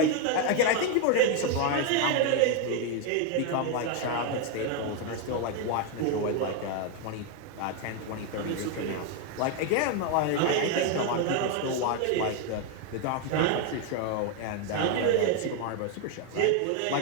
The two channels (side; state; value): both; different; correlation 0.01